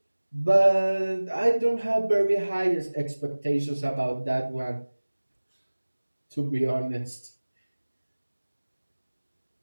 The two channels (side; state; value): both; inverted; correlation -1.00